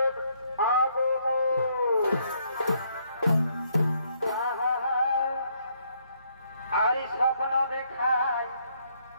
আর স্বপ্ন দেখায়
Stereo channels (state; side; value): inverted; both; correlation -0.70